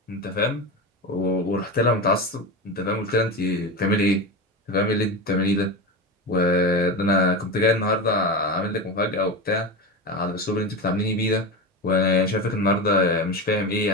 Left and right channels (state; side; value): normal; both; correlation 0.21